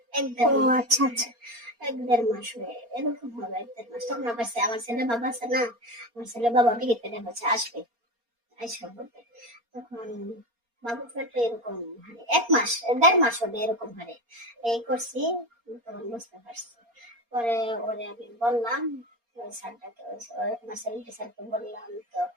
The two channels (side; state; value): left; late; 4.3 ms